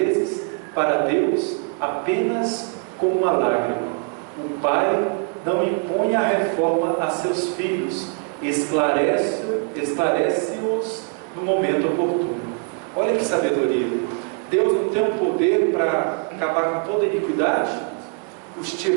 para Deus apenas com uma lágrima. O Pai não impõe a reforma a seus filhos, esclarece-os no momento oportuno. Olha que sabedoria! Deus não tem um poder para acabar com toda a iniquidade? Os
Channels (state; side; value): quieter; left; 39.4 dB